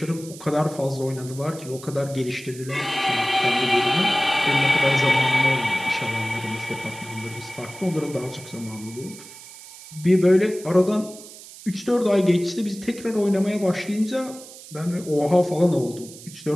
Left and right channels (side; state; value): right; noise; hiss, 17 dB below the sound